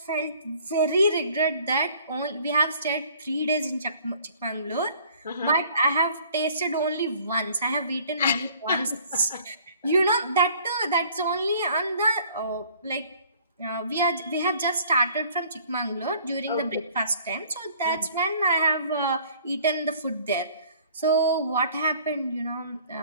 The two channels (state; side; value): inverted; both; correlation -0.55